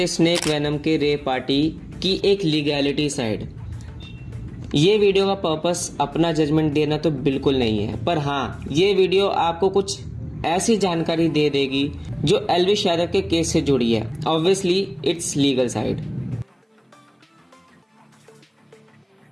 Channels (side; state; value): both; identical; correlation 1.00